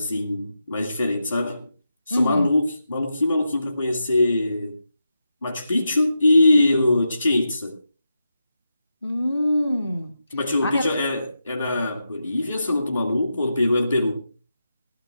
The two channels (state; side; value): inverted; both; correlation -0.88